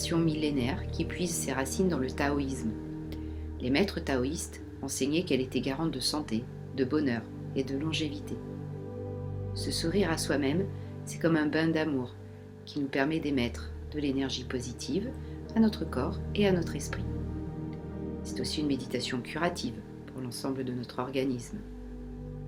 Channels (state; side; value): identical; both; correlation 1.00